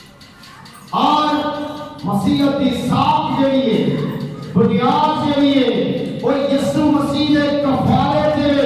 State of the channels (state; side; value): identical; both; correlation 1.00